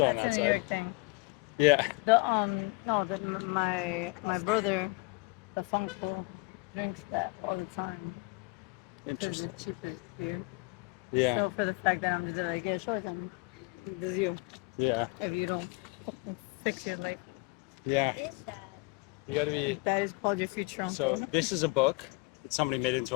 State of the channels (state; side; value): quieter; right; 26.1 dB